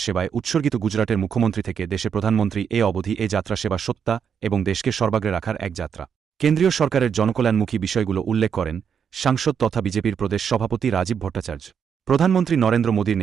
সেবায় উৎসর্গিত গুজরাটের মুখ্যমন্ত্রী থেকে দেশের প্রধানমন্ত্রী এ অবধি এ যাত্রা সেবা সত্তা এবং দেশকে সর্বাগ্রে রাখার এক যাত্রা। কেন্দ্রীয় সরকারের জনকল্যাণমুখী বিষয়গুলো উল্লেখ করেন সাংসদ তথা বিজেপির প্রদেশ সভাপতি রাজীব ভট্টাচার্য। প্রধানমন্ত্রী নরেন্দ্র মোদীর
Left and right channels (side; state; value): left; quieter; 7.3 dB